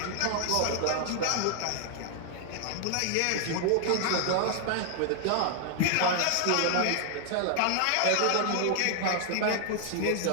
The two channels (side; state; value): both; different; correlation 0.00